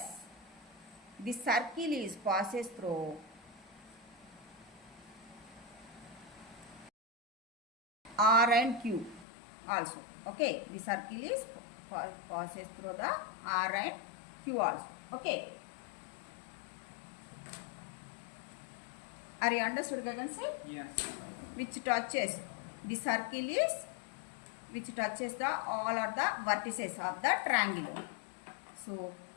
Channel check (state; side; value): drops out; right; at 9.2 s